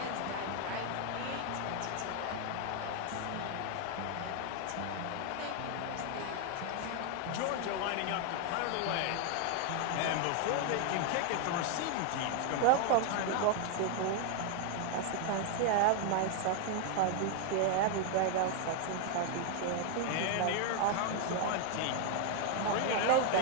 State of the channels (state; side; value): different; both; correlation 0.00